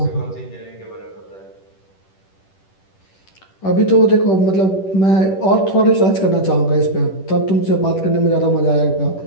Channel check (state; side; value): late; right; 10 ms